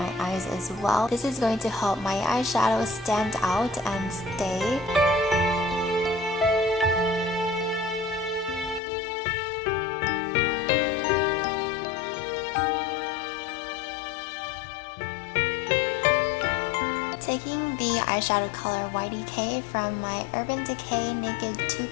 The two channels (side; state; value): right; drops out; at 8.8 s